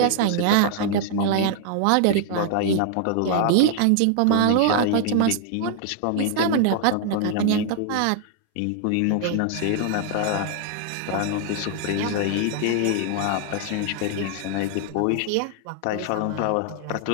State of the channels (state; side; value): different; both; correlation 0.00